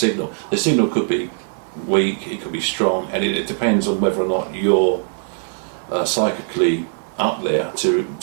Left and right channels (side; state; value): left; silent; 65 dB below the other